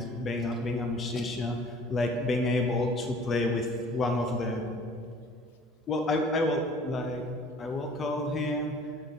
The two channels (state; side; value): normal; both; correlation 0.51